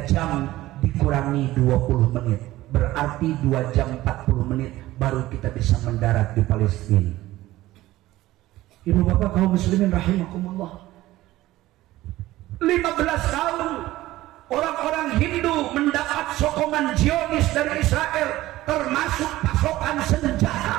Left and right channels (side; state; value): left; quieter; 16.5 dB